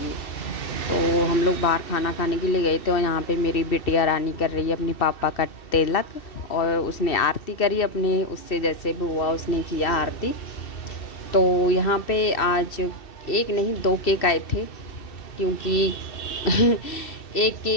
तो हम लोग बाहर खाना खाने के लिए गए थे। और यहाँ पे मेरी बिटिया रानी कर रही है अपनी पापा का तिलक, और उसने आरती करी अपने, उससे जैसे भी हुआ उसने किया आरती। तो यहाँ पे आज एक नहीं 2 केक आए थे, क्योंकि एक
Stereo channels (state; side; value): late; right; 2.7 ms